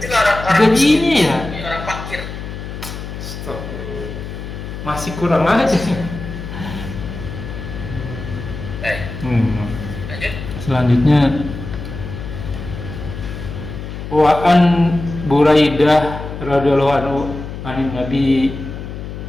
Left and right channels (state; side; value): noise; left; hum, 9 dB below the sound